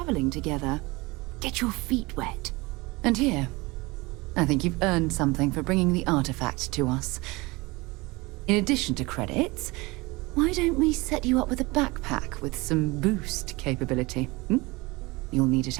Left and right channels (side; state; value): left; quieter; 23.5 dB